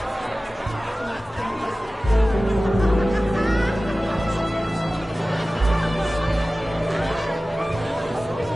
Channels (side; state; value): both; normal; correlation 0.96